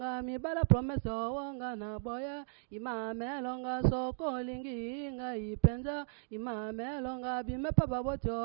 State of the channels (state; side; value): silent; left; digital silence